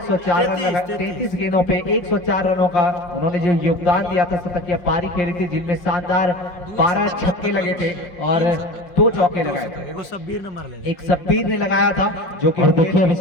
रन लगाए, 33 गेंदों पे 104 रनों का उन्होंने जो योगदान दिया था, शतकीय पारी खेली थी जिनमें शानदार 12 छक्के लगे थे और 2 चौके लगाए थे। एक शब्बीर ने मार लिया, एक शब्बीर ने लगाया था जो कि देखिए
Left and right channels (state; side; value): late; right; 5.7 ms